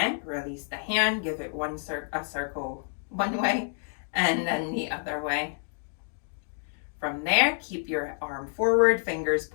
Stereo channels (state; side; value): silent; right; 58 dB below the other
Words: release the hand. Give it a circle one way and then the other way. From there, keep your arm forward, fingers